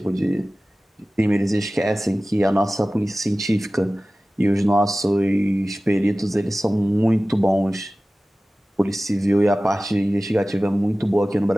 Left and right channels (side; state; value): both; normal; correlation 0.97